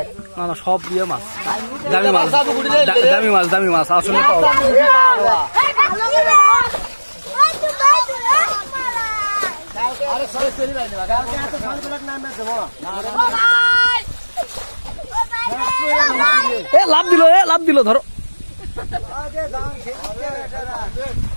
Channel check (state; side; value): inverted; both; correlation -1.00